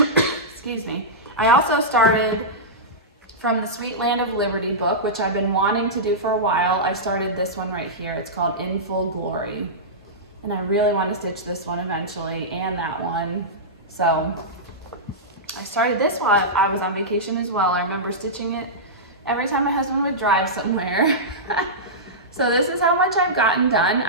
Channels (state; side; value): normal; both; correlation -0.14